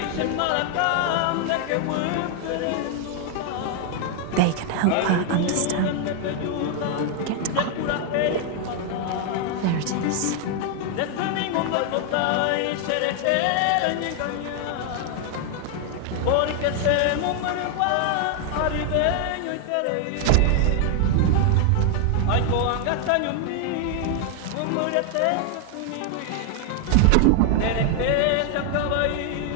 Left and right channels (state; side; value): different; both; correlation 0.00